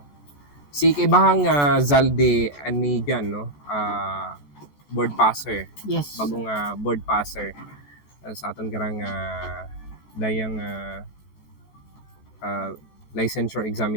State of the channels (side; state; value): right; late; 14 ms